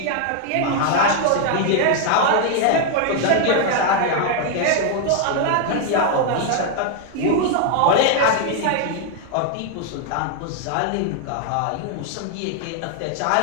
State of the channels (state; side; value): different; both; correlation 0.00